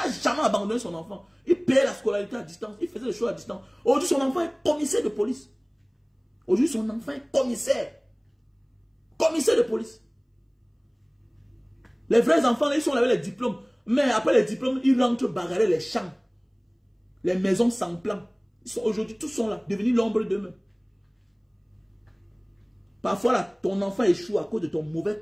jamais abandonné son enfant. Il payait la scolarité à distance. Il faisait les choses à distance. Aujourd'hui, son enfant est commissaire de police. Aujourd'hui, son enfant est commissaire. Commissaire de police. Les vrais enfants, ils sont là avec les diplômes. Mais après les diplômes, ils rentrent bagarrer les champs. Les maisons sans plan. Aujourd'hui, tous sont là, devenus l'ombre d'eux-mêmes. Parfois, là, ton enfant échoue à cause de ton mauvais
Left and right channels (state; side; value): identical; both; correlation 1.00